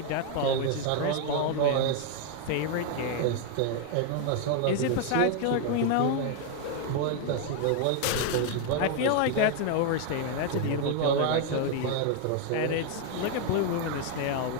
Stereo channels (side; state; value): both; different; correlation 0.00